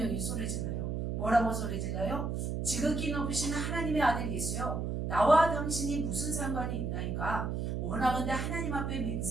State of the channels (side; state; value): right; noise; hum, 1 dB below the sound